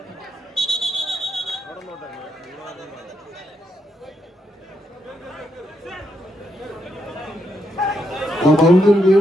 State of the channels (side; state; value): both; normal; correlation 0.80